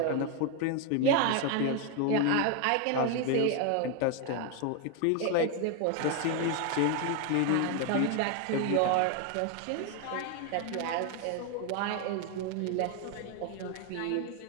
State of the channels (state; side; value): different; both; correlation 0.01